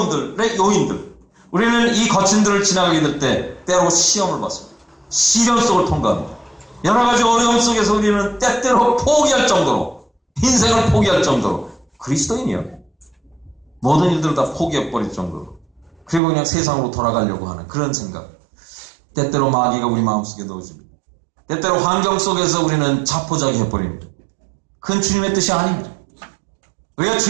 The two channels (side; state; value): left; drops out; at 16.2 s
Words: 요인들, 우리는 이 거친들을 지나가게 될 때 때로 시험을 받습니다. 시련 속을 통과합니다. 여러 가지 어려움 속에서 우리는 때때로 포기할 정도로, 인생을 포기할 정도로, 그리스도인이요, 모든 일들을 다 포기해버릴 정도로, 그리고 그냥 세상으로 돌아가려고 하는 그런 생각, 때때로 마귀가 우리 마음속에 넣어줍니다. 때때로 환경 속에서 우리는 자포자기 해버립니다. 그건 주님의 뜻이 아닙니다. 우리가